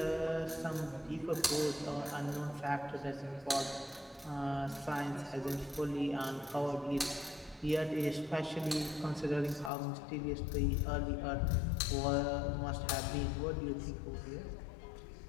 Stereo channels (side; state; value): right; drops out; at 9.7 s